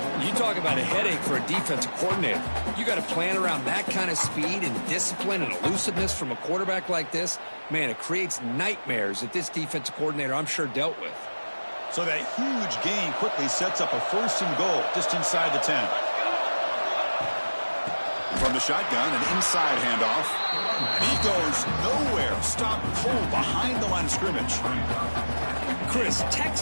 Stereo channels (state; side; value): inverted; both; correlation -1.00